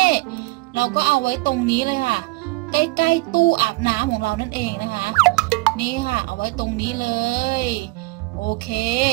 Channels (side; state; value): left; quieter; 23.9 dB